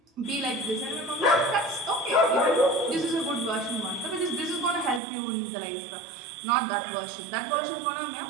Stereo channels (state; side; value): drops out; left; at 5.0 s